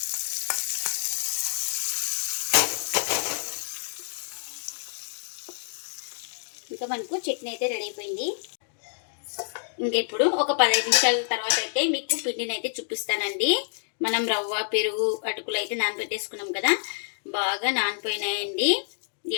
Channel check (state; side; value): silent; right; digital silence